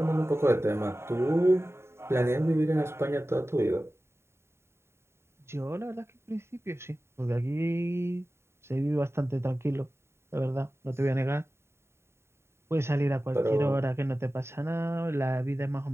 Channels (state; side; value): late; left; 0.12 ms